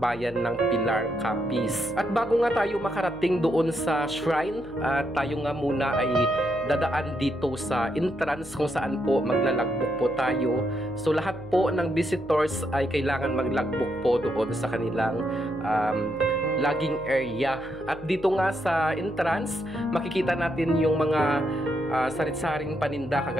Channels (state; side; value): noise; left; hum, 19 dB below the sound